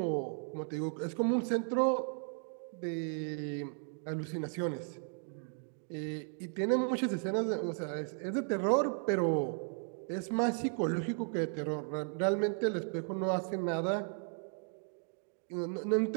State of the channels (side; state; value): left; silent; 54 dB below the other